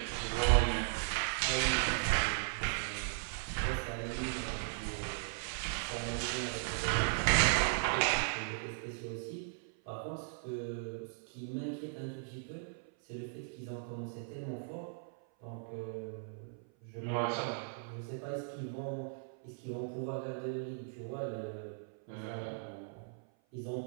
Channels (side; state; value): left; silent; 53 dB below the other